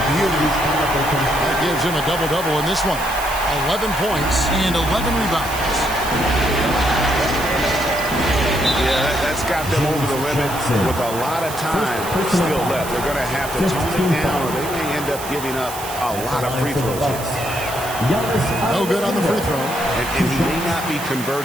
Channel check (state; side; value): noise; right; hiss, 11 dB below the sound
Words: gives him a double-double in this one. 11 points and 11 rebounds. Yeah, that's got them over the limit with a lot of time still left. They're going to have to tone it down, or they may end up giving up a lot of free throws. No good on the free throw. And he may not be